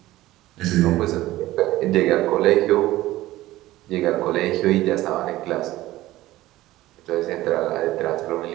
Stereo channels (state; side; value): quieter; left; 16.4 dB